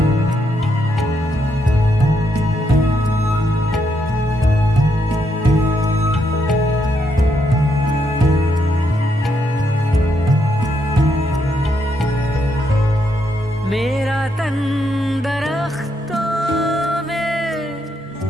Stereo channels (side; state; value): both; normal; correlation 0.78